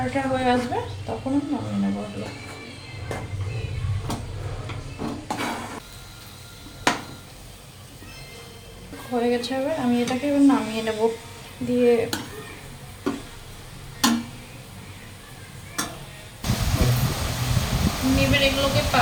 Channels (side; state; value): both; identical; correlation 1.00